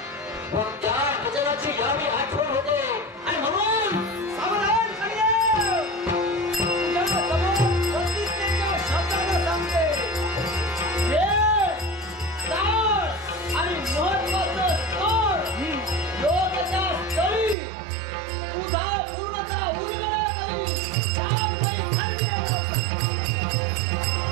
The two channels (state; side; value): drops out; left; at 17.6 s